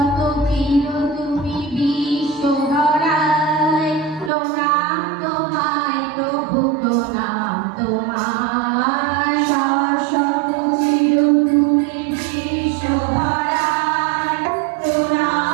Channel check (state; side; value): drops out; left; at 4.3 s